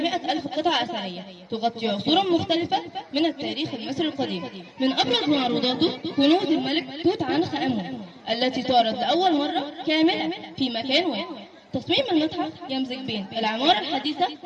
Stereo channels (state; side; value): identical; both; correlation 1.00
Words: 100,000 قطعة أثرية تغطي عصورا مختلفة من التاريخ المصري القديم. من أبرز معروضاته كنوز الملك توت عنخ آمون التي تعرض لأول مرة كاملة في مكان واحد. تصميم المتحف يمزج بين العمارة الحديثة